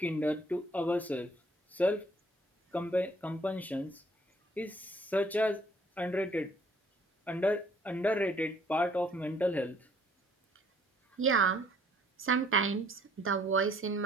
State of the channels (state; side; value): normal; both; correlation 0.61